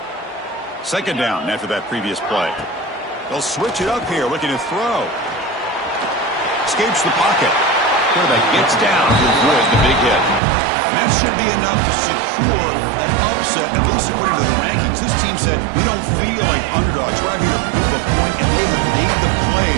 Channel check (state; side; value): drops out; left; at 10.4 s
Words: 2nd down after that previous play. They'll switch it up here, looking to throw. Escapes the pocket. Quarterback gets down to avoid the big hit. And that should be enough to secure an upset, at least according to the rankings. This team said, we don't feel like underdogs. We're out here to prove a point, and they have made the